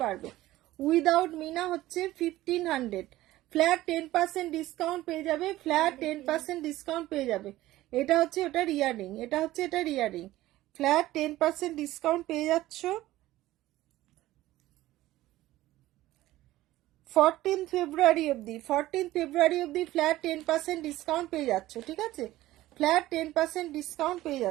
বাড়বে। উইদাউট মিনা হচ্ছে 1500। ফ্ল্যাট 10% ডিসকাউন্ট পেয়ে যাবে, ফ্ল্যাট 10% ডিসকাউন্ট পেয়ে যাবে। এটা হচ্ছে ওটার ইয়ারিং, এটা হচ্ছে এটার ইয়ারিং, ফ্ল্যাট 10% ডিসকাউন্ট পেয়ে যাচ্ছ। 14 ফেব্রুয়ারি অবধি, 14 ফেব্রুয়ারি অবধি ফ্ল্যাট 10% ডিসকাউন্ট পেয়ে যাচ্ছ, ঠিক আছে, ফ্ল্যাট 10% ডিসকাউন্ট পেয়ে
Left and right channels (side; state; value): left; quieter; 16.1 dB